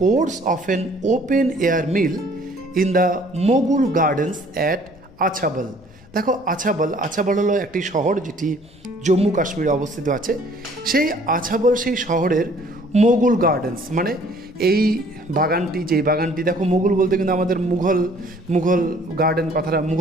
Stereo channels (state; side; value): noise; left; rumble, 25 dB below the sound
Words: course of an open-air meal in the Mughal Gardens at আছাবল। দেখো, আছাবল হলো একটি শহর যেটি জম্মু কাশ্মীরে অবস্থিত আছে। সেই আছাবল, সেই শহরের মুঘল গার্ডেন্স, মানে এই বাগানটি, যেই বাগানটি, দেখো মুঘল বলতে কিন্তু আমাদের মুঘল গার্ডেন কথাটা,